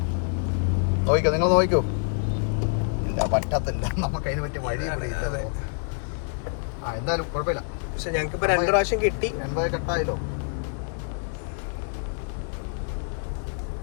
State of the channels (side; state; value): right; silent; 61 dB below the other